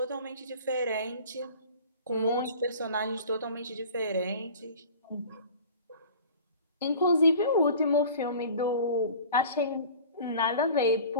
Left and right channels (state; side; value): inverted; both; correlation -0.43